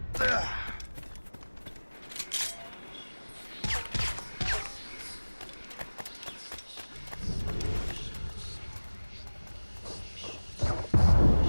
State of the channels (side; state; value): both; inverted; correlation -1.00